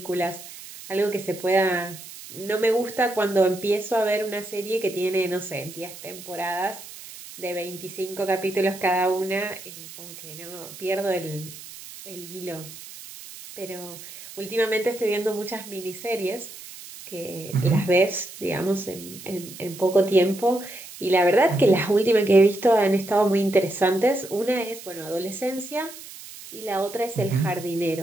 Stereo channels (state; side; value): noise; right; hiss, 15 dB below the sound